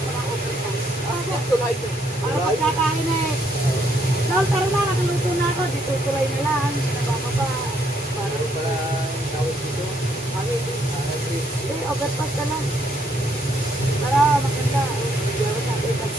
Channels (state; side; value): normal; both; correlation 0.71